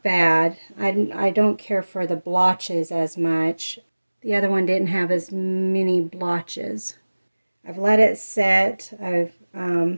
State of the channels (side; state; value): both; inverted; correlation -1.00